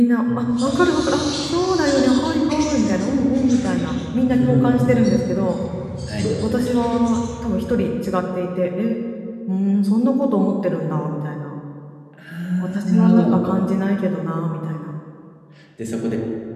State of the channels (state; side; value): identical; both; correlation 1.00